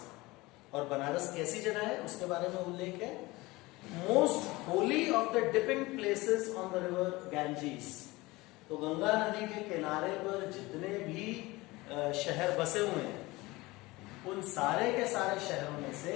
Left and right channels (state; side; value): quieter; right; 21.3 dB